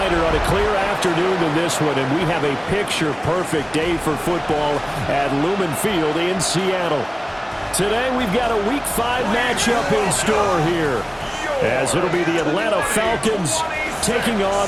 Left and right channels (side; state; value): both; identical; correlation 1.00